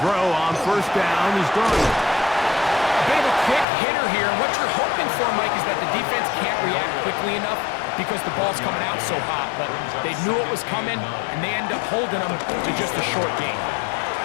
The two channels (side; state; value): right; drops out; at 3.7 s